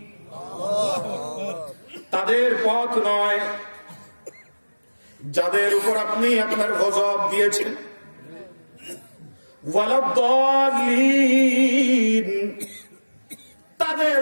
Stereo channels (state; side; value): inverted; both; correlation -1.00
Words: তাদের পথ নয় যাদের উপর আপনি আপনার গজব দিয়েছেন। ওয়ালাদ-দাল্লিন,